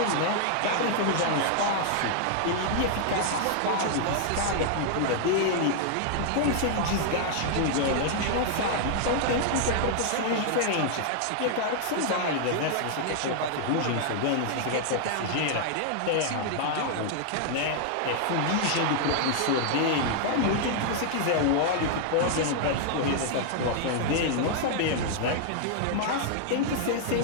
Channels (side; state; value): both; different; correlation -0.01